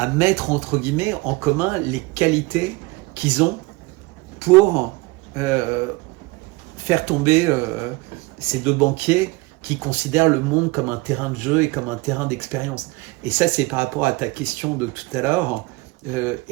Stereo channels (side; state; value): left; quieter; 23.7 dB